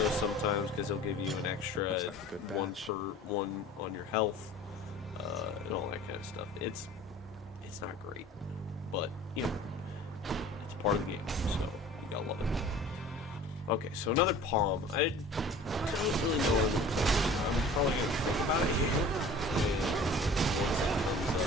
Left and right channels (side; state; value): both; normal; correlation 0.44